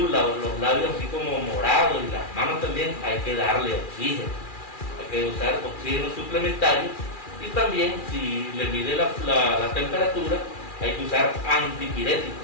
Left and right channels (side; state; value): right; late; 2.4 ms